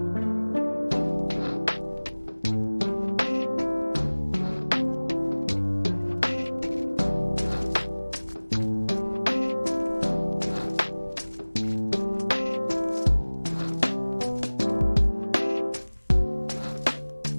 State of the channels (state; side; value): inverted; both; correlation -1.00